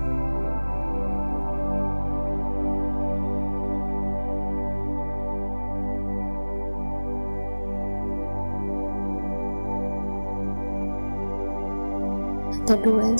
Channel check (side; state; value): both; inverted; correlation -1.00